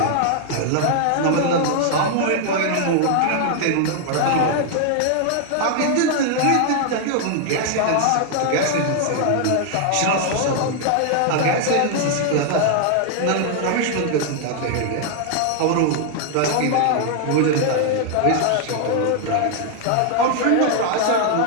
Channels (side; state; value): both; different; correlation 0.00